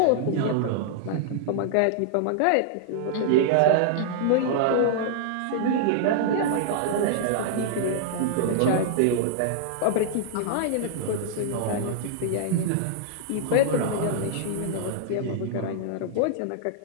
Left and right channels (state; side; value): different; both; correlation -0.01